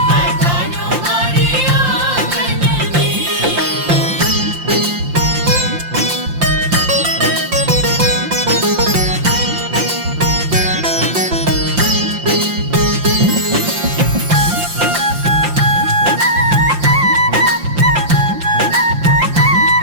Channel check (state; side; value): late; left; 5.7 ms